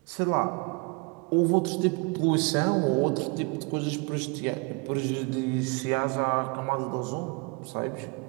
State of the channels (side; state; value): left; quieter; 30.9 dB